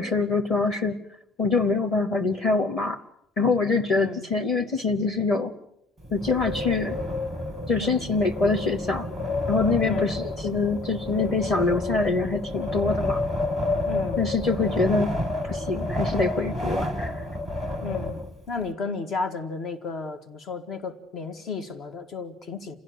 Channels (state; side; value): quieter; right; 3.1 dB